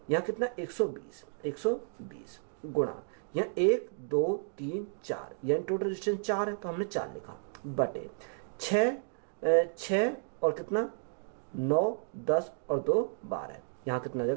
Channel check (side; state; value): left; silent; digital silence